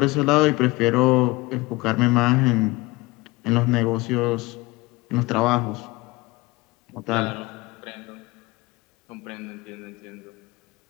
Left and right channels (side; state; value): right; quieter; 22.4 dB